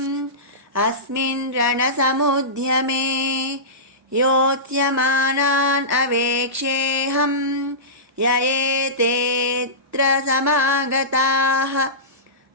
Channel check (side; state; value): both; normal; correlation -0.19